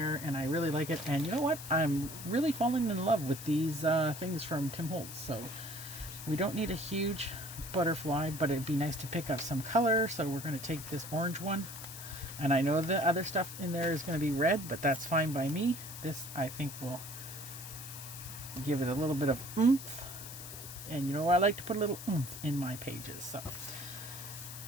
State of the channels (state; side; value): noise; left; hiss, 11 dB below the sound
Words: and I really like it. And you know what? I'm really falling in love with these things from Tim Holtz. So we don't need a huge butterfly, but it'd be nice to pick up some color. So we're going to take this orange one. And I know the other stuff in there is going to be red, but that's fine by me. This, I think, will give it a little bit of oomph. And you know, I like to put a little oomph in my pages. So